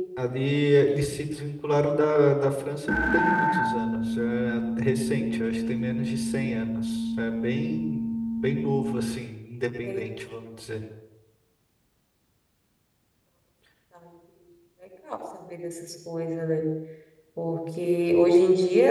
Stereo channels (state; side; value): identical; both; correlation 1.00